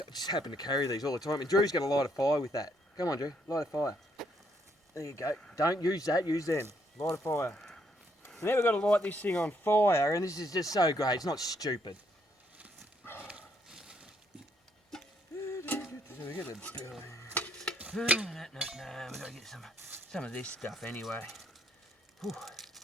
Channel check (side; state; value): both; normal; correlation 0.72